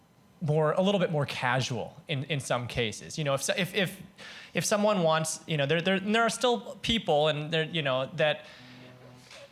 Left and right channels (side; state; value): both; identical; correlation 1.00